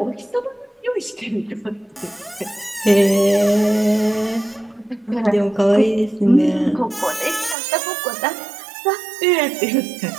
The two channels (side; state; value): left; drops out; at 7.6 s